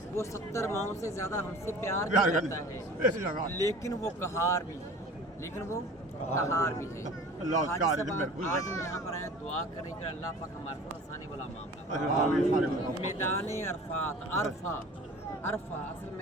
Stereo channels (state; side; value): normal; both; correlation 0.43